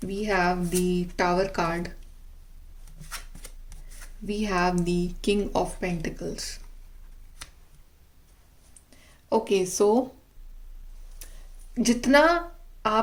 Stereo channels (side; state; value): both; identical; correlation 1.00